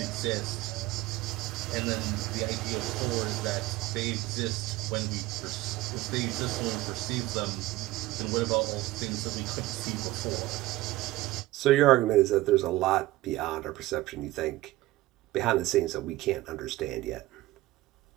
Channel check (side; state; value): left; quieter; 17.8 dB